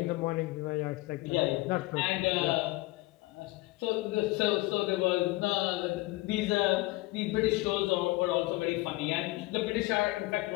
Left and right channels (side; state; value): right; quieter; 20.7 dB